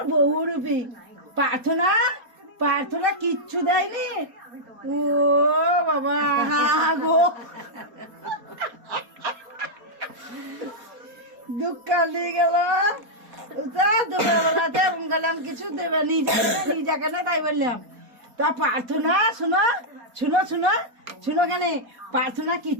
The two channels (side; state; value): left; late; 4.3 ms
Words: বহুরূপী প্রার্থনা, প্রার্থনা কিচ্ছু দেয়নি, ও বাবা গো, দুঃখ নিয়ে গেল। দুপুরবেলাতে গেলাম কিছু দেবে নিজেকে না, তাই বললাম। তা প্রার্থনা শোনো শুনো শুনো শুনো, কেন প্রার্থনা